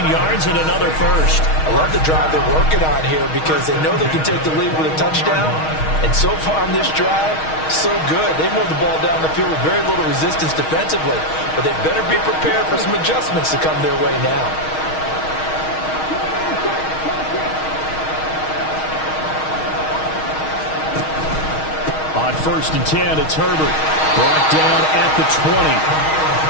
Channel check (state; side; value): late; right; 6.4 ms